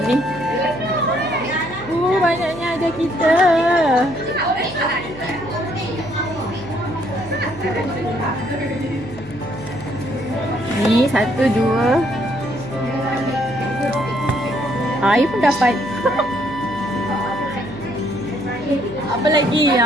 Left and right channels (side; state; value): right; noise; hum, 20 dB below the sound